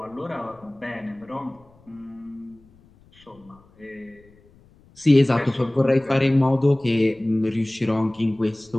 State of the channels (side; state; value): left; noise; rumble, 29 dB below the sound